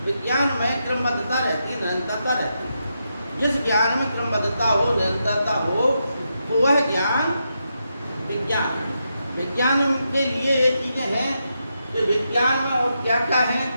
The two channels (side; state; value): both; inverted; correlation -0.84